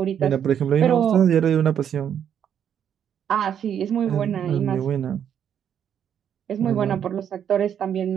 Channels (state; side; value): quieter; left; 8.9 dB